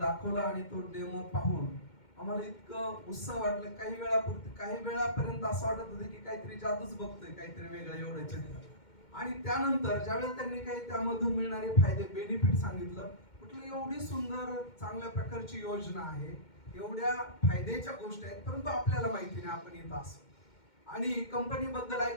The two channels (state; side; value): late; right; 2.1 ms